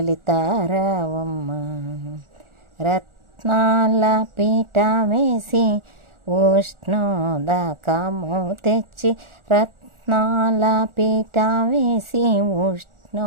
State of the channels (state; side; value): late; left; 1.4 ms